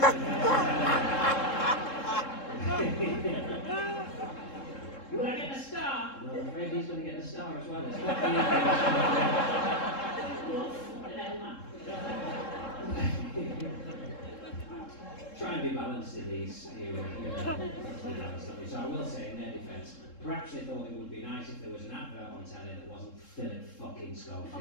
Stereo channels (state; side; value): late; right; 3.7 ms